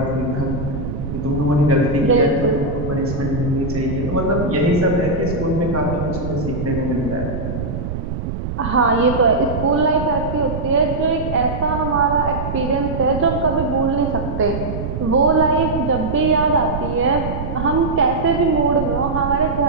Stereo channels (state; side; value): noise; right; rumble, 5 dB below the sound